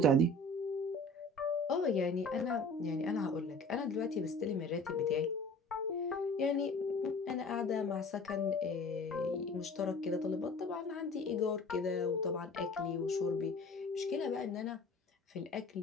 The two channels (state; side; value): normal; both; correlation 0.45